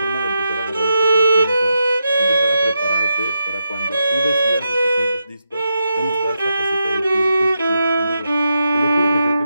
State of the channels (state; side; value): inverted; both; correlation -0.86